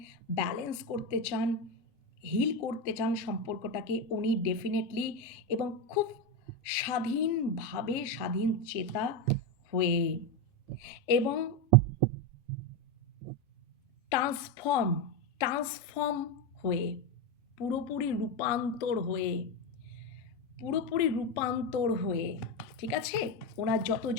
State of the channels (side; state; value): both; normal; correlation 0.12